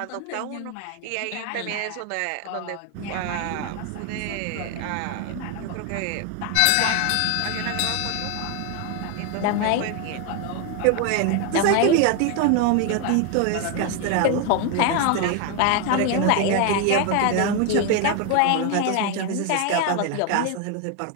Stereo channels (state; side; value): different; both; correlation 0.01